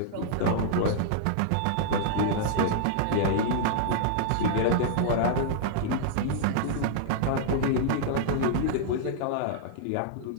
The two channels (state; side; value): different; both; correlation -0.01